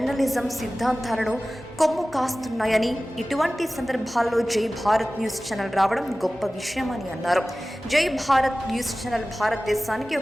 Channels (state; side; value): normal; both; correlation 0.97